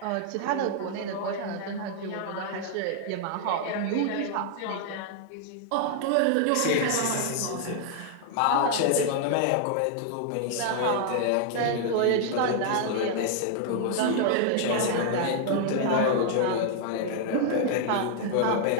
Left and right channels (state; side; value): different; both; correlation 0.00